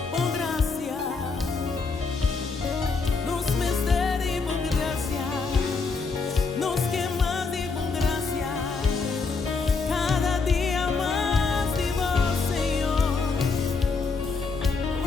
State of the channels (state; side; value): quieter; right; 4.5 dB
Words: Oh, gracia, nos misteri, por gracia, nos quemas de por gracia, cada día más de vos, Señor.